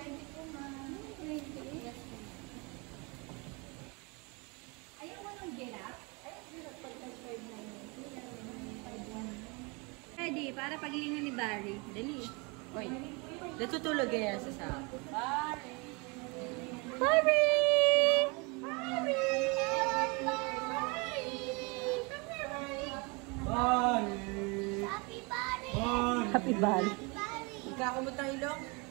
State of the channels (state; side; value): quieter; left; 29.5 dB